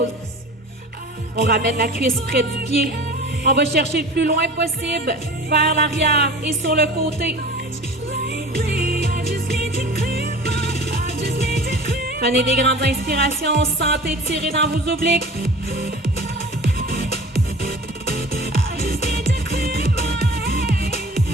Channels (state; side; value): normal; both; correlation 0.40